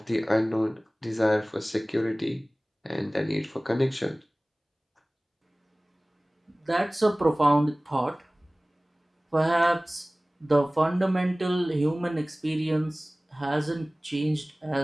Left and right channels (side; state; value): both; normal; correlation 0.98